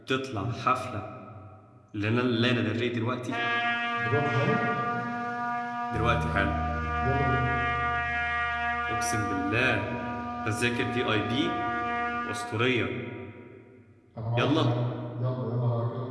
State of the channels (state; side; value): identical; both; correlation 1.00